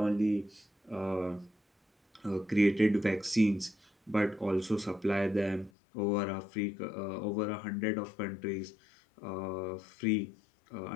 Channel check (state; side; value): drops out; right; at 5.7 s